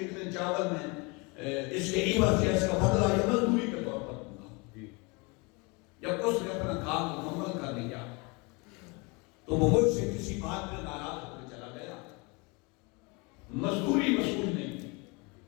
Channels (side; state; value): right; quieter; 28.6 dB